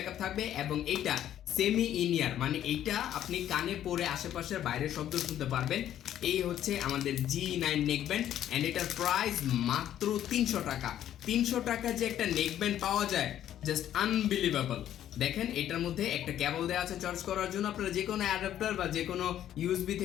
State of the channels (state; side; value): quieter; right; 11.3 dB